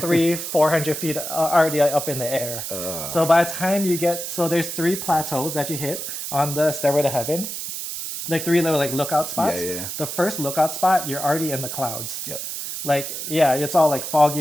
feet already up in the air. So by the time you get, so there's 3 plateaus that you hit on the Stairway to Heaven, like 3 little like lookout spots. Yeah. The first lookout spot, you're already in the clouds. Yep. Like yeah, it's all like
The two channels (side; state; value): right; noise; hiss, 6 dB below the sound